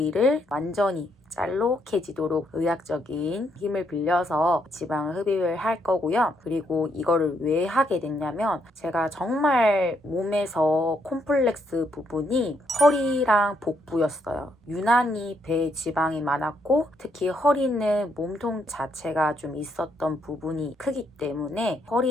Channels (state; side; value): normal; both; correlation 0.75